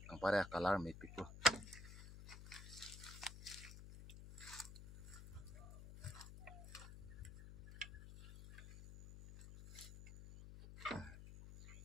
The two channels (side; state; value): left; noise; hum, 12 dB below the sound